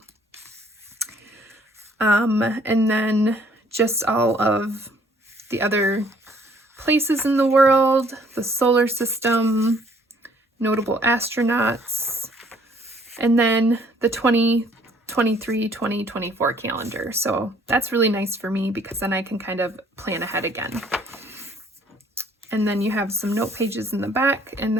And then just all of the other places in the world, the solar system, notable astronauts, and then the 2023-2024 calendar. So that's really nice for me because then I can kind of plan ahead again. And then you have some note pages in the back, and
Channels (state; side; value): normal; both; correlation 0.61